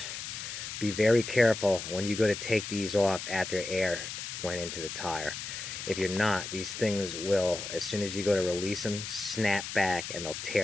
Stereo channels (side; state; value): left; noise; hiss, 7 dB below the sound